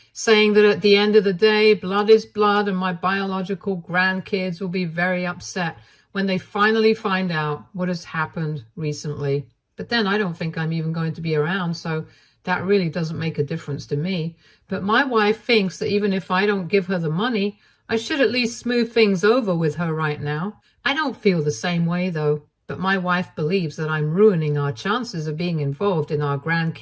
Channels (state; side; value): identical; both; correlation 1.00